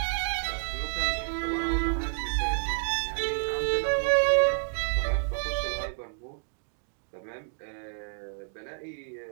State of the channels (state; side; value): silent; left; digital silence